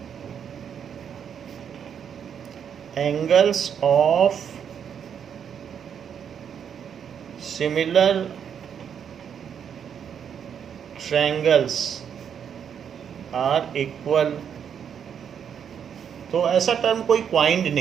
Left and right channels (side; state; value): left; quieter; 8.0 dB